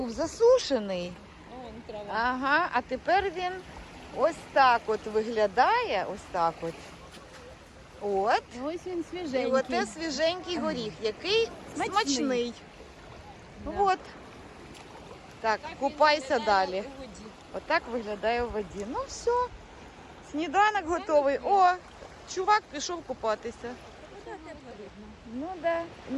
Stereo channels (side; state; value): both; identical; correlation 1.00